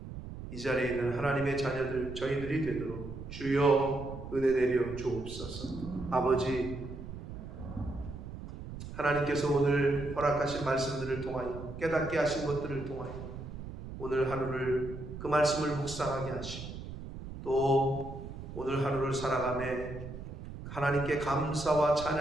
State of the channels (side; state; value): right; noise; rumble, 10 dB below the sound